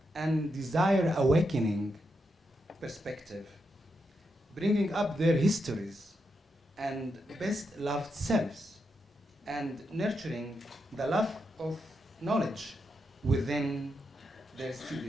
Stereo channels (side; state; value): both; normal; correlation 0.84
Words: and desire-awakening perspective, bringing up their histories and best-loved selves, and nurturing the love of knowledge within their